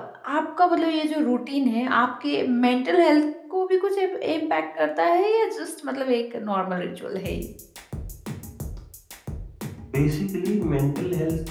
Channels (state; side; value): identical; both; correlation 1.00